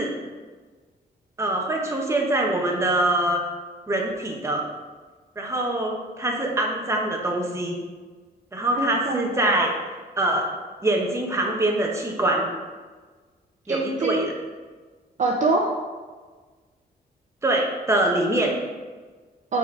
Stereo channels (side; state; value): both; normal; correlation 0.37